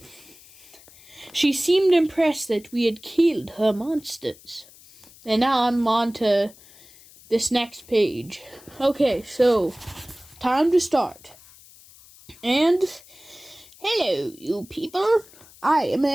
she seemed impressed that we had killed her monsters. And now I'm on to this next page. Okay, so time to start. And hello, you people. I am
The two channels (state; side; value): noise; left; hiss, 23 dB below the sound